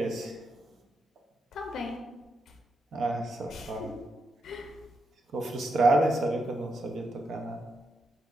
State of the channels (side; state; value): both; normal; correlation 0.83